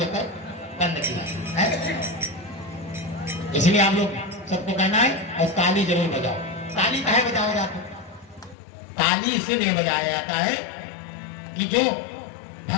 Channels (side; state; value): right; drops out; at 8.6 s